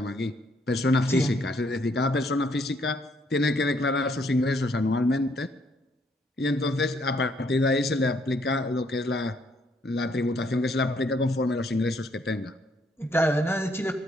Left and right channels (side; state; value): both; normal; correlation 0.69